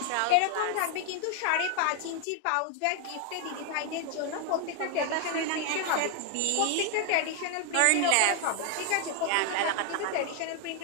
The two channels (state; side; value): different; both; correlation 0.00